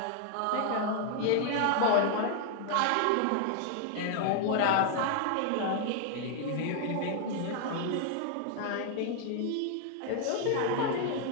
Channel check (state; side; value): different; both; correlation 0.00